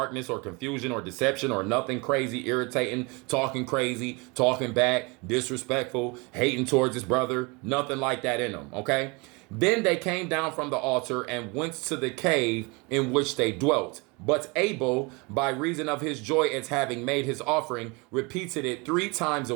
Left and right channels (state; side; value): quieter; left; 28.1 dB